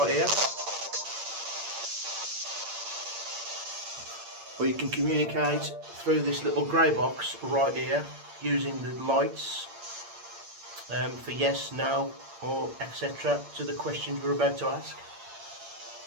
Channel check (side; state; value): left; late; 8.7 ms